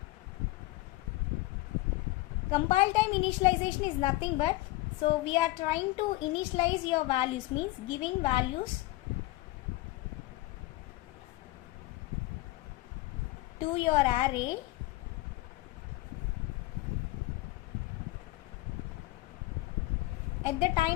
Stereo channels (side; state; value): right; quieter; 19.3 dB